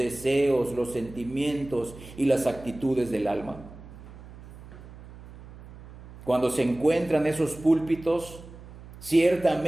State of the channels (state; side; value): noise; right; hum, 17 dB below the sound